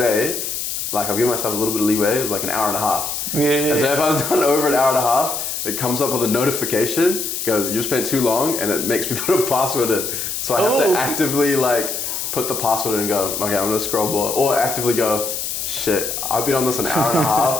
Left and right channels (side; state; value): left; noise; hiss, 4 dB below the sound